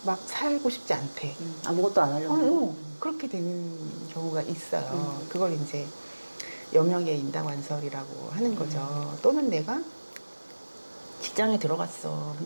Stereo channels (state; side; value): inverted; both; correlation -1.00